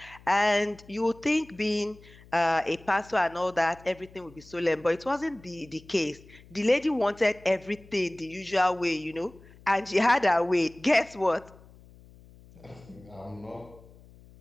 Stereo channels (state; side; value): noise; left; hum, 23 dB below the sound